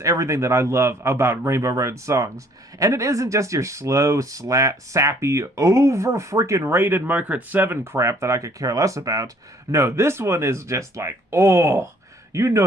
everything that I love about Rainbow Road songs. And it isn't just your slow, sappy, over-freaking-rated Mario Kart 7 crap that I could care less about. No, this one is just like, oh, you know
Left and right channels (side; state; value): both; normal; correlation 0.60